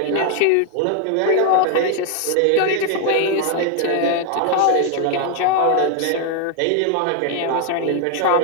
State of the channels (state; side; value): different; both; correlation 0.01